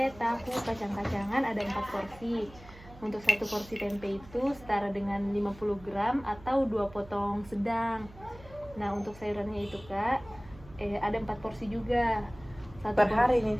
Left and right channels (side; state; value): right; noise; hum, 20 dB below the sound